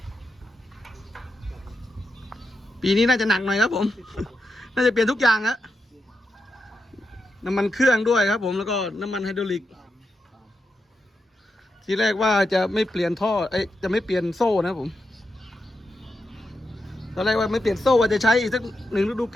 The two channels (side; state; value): both; normal; correlation 0.87